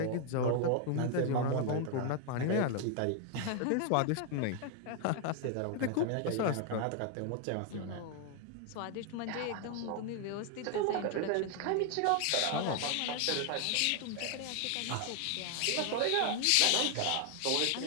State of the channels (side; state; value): both; different; correlation 0.00